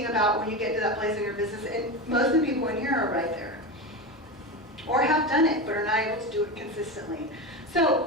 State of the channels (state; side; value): normal; both; correlation 0.21